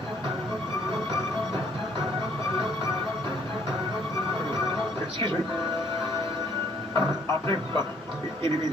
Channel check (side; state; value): both; normal; correlation 0.64